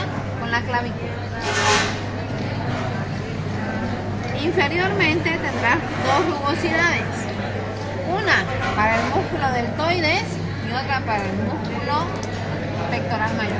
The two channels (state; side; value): identical; both; correlation 1.00